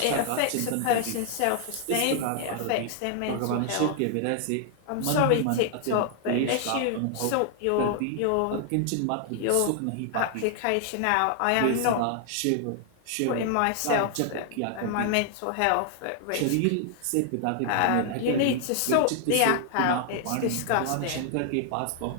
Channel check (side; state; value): both; different; correlation 0.00